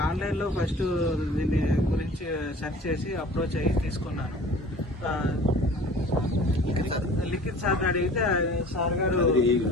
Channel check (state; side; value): normal; both; correlation 0.46